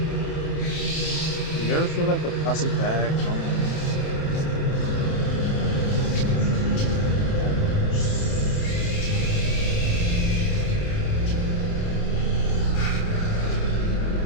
Do you ever feel like a plastic bag?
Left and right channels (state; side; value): late; right; 27 ms